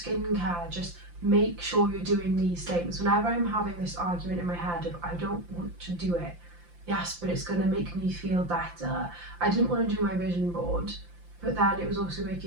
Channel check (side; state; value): left; late; 5.8 ms